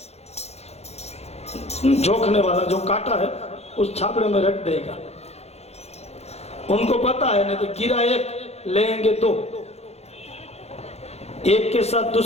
जोखने वाला जो काटा है उस छापड़े में रख देगा। उनको पता है नहीं तो गिरा एक लेंगे 2, एक के साथ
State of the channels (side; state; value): right; late; 0.31 ms